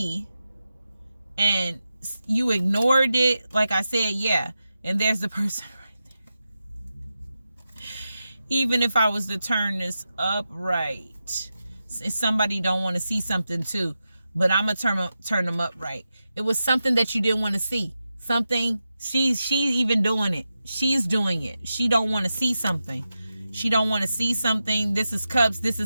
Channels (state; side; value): inverted; both; correlation -0.90